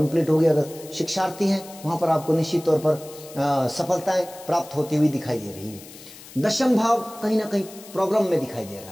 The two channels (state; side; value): noise; left; hiss, 18 dB below the sound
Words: हो गई। अगर शिक्षार्थी हैं वहां पर आपको निश्चित तौर पर सफलताएं प्राप्त होती हुई दिखाई दे रही है। दशम भाव कहीं ना कहीं प्रॉब्लम में दिखाई दे रहा